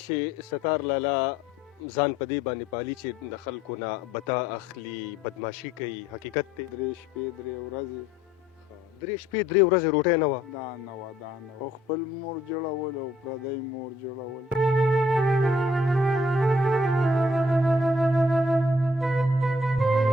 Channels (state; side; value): normal; both; correlation 0.63